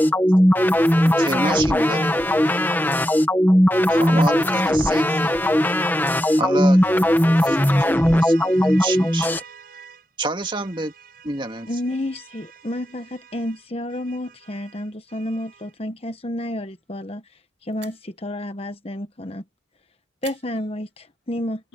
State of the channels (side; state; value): both; normal; correlation 0.87